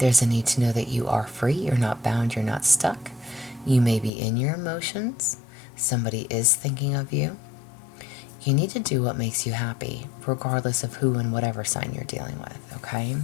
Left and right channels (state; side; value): drops out; right; at 4.1 s